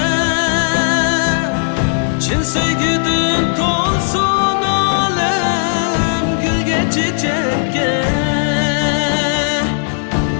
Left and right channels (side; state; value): right; silent; 62 dB below the other